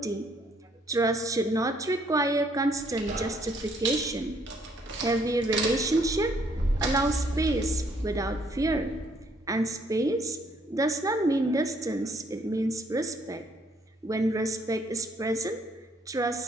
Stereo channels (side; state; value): both; normal; correlation 0.67